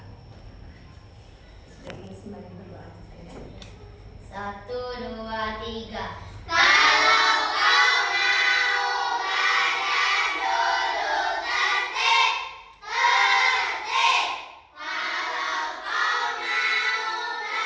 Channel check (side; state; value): both; identical; correlation 1.00